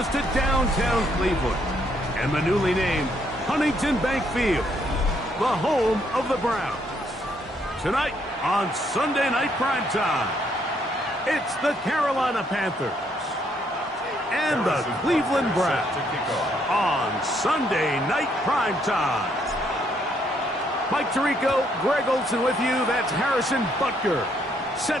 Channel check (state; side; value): normal; both; correlation 0.71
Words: to downtown Cleveland and the newly named Huntington Bank Field, the home of the Browns. Tonight on Sunday Night Primetime, it's the Carolina Panthers and the Cleveland Browns on Sunday Night Primetime. Mike Tirico, Greg Olson with you. That's Harrison Butker,